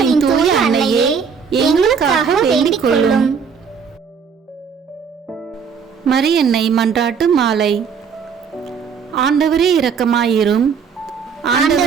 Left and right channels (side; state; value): left; quieter; 6.3 dB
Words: தூய அன்னையே, எங்களுக்காக வேண்டிக் கொள்ளும். மரியன்னை மன்றாட்டு மாலை. ஆண்டவரே இரக்கமாயிரும்,